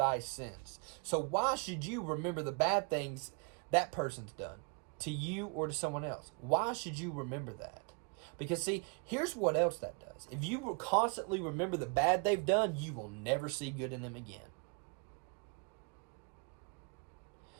sins. So why should you remember the bad things that person's done to you or to someone else? Why should you remember that? Because see, here's what else that does. If you will constantly remember the bad they've done, you will never see good in them again.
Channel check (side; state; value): left; quieter; 34.2 dB